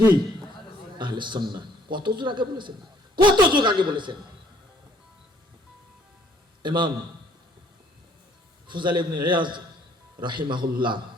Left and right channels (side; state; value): both; normal; correlation 0.62